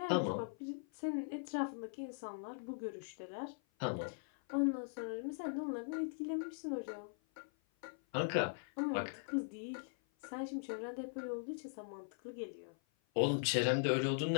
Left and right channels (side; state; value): right; silent; 51 dB below the other